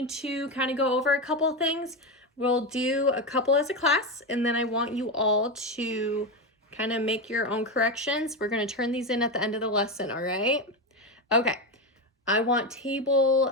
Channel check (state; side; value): normal; both; correlation 0.14